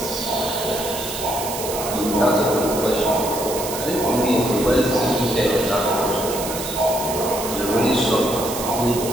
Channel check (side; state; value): right; noise; hiss, 7 dB below the sound